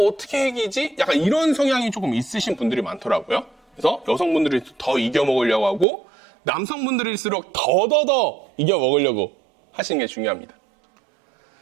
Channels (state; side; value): drops out; left; at 5.9 s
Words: 이기지? 약간 이런 성향이 조금 있으신 분들이 많더라고요. 그래서 여성분들이 더 이겨 먹으려고 하고 남성분들일수록 더더더 이겨 먹으려고 하시는 게 중요합니다.